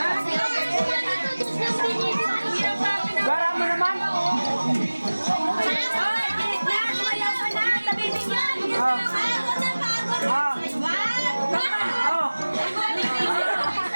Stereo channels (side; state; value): both; inverted; correlation -1.00